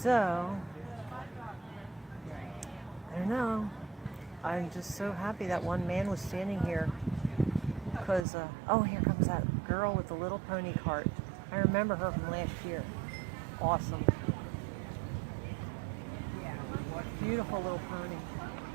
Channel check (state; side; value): drops out; left; at 8.2 s